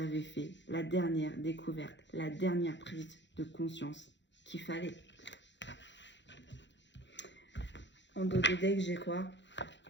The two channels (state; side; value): late; right; 0.52 ms